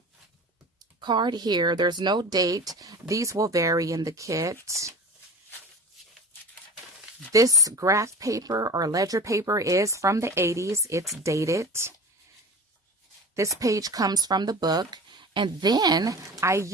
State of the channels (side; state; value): both; normal; correlation 0.34